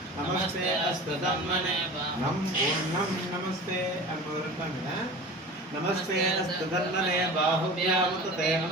నమస్తే అస్తధన్మనే నమస్తే అనుకుంటున్నాను नमस्ते अस्तधन्मने बाहुभ्यामुते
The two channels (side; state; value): both; normal; correlation 0.36